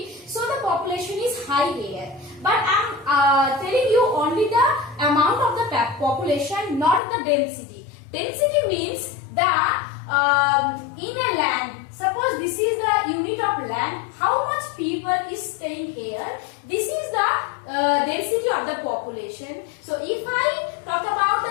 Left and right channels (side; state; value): right; drops out; at 7.0 s